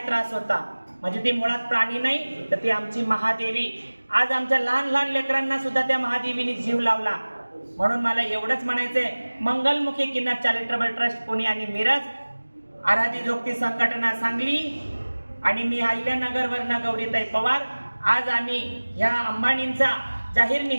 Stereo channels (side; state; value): both; inverted; correlation -1.00